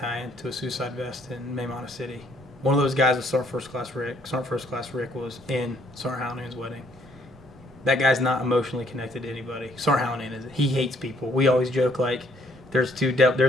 to a suicide vest in Maymana City. One of those guys was Sergeant First Class Rick. Sergeant First Class Rick was in Sergeant Hallinan's wedding. That guy's not emotionally connected to anybody. Sergeant Hallinan is. He hates people. We always joke like, there's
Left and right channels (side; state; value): both; normal; correlation 0.65